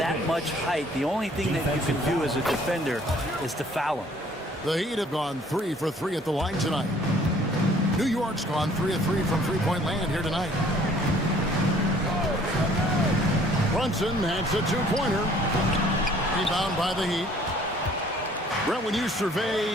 much height, the only thing that you can do as a defender is to foul him. The Heat have gone 3 for 3 at the line tonight. New York's gone 3 of 3 from three-point land here tonight. Brunson has a 2-pointer. Rebound by the Heat. Brent, when you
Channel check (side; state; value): both; normal; correlation 0.57